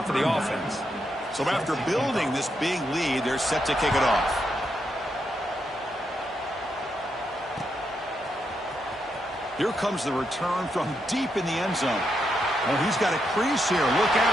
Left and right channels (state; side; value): normal; both; correlation 0.81